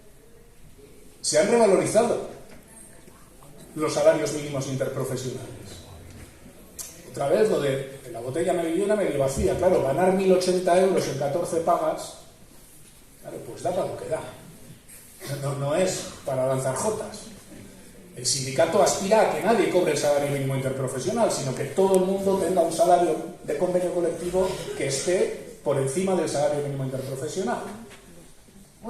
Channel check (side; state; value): both; identical; correlation 1.00